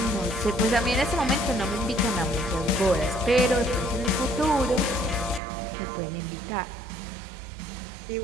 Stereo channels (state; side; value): drops out; left; at 5.4 s